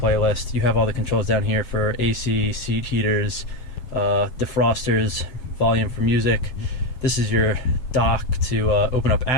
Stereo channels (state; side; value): late; right; 7.9 ms